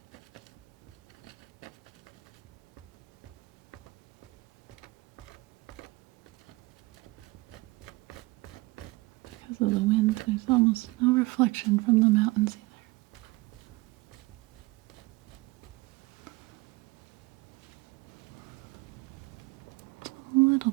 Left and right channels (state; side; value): quieter; left; 23.2 dB